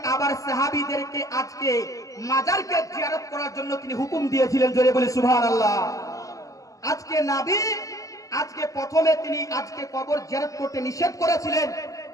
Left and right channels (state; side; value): late; right; 0.16 ms